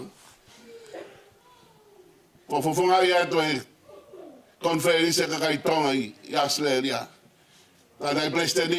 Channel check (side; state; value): both; identical; correlation 1.00